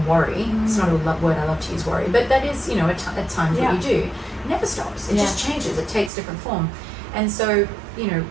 worry. It's not a word I love to use, worry, but that is, you know, at times what you do. It never stops. It just changes. It takes different form, and so, you know,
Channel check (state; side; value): drops out; left; at 6.1 s